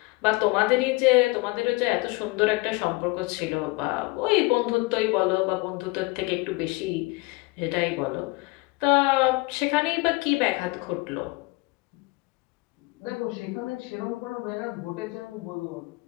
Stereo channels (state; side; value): quieter; right; 24.5 dB